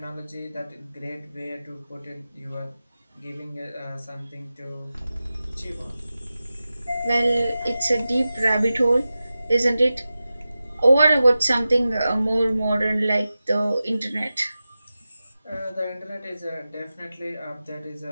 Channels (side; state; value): both; inverted; correlation -0.94